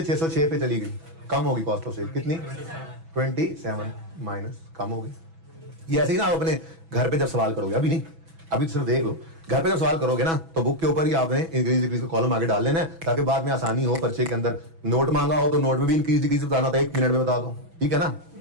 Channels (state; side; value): late; left; 6.1 ms